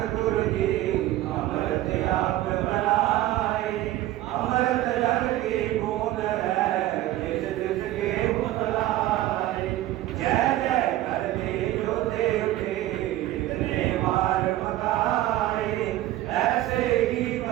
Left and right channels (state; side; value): quieter; left; 15.2 dB